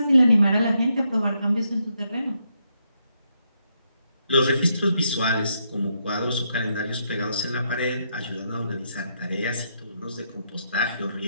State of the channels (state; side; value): inverted; both; correlation -0.79